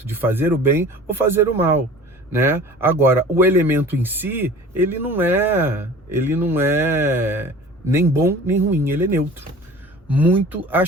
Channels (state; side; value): normal; both; correlation 0.43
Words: de fazer o bem ou fazer o mal, né? Agora, o elemento em si, ele não é nem bom nem ruim, ele é neutro. Muito